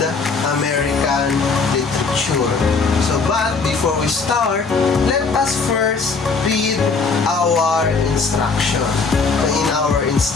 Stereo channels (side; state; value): right; quieter; 4.6 dB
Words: American literature. But before we start, let us first read our instruction. In our